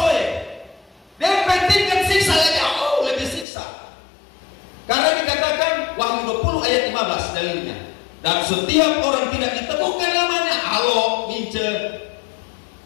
dia pentingkan siksa lebih siksa. Karena dikatakan Wahyu 20 ayat 15 dalilnya. Dan setiap orang tidak ditemukan namanya, Alo, Mince,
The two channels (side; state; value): right; drops out; at 3.5 s